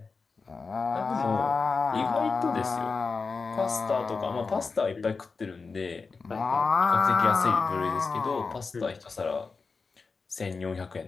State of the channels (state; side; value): quieter; right; 4.6 dB